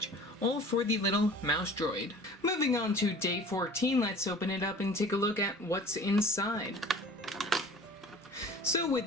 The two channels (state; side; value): normal; both; correlation 0.45